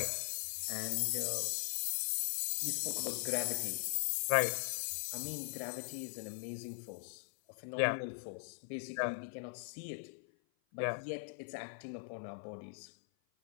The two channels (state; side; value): silent; right; 51 dB below the other